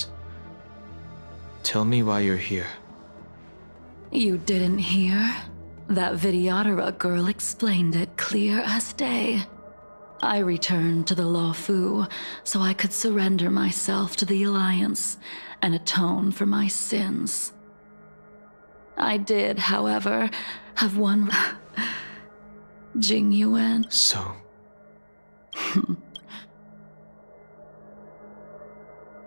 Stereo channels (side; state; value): both; inverted; correlation -1.00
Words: Tell me why you're here. You didn't hear? That Vidyadhara girl explained it clear as day. I returned to the Luofu so I could surrender myself to the Alliance and atone for my sins. I did, however, have one Jingyuan. So?